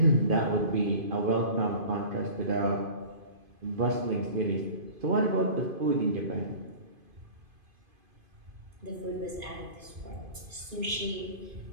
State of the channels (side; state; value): left; late; 2.5 ms